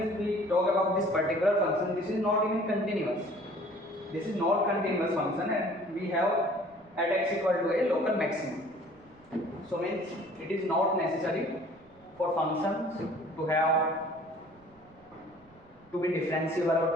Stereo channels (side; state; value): right; noise; rumble, 29 dB below the sound